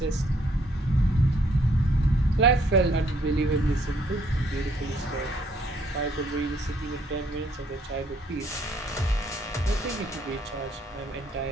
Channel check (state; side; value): normal; both; correlation 0.67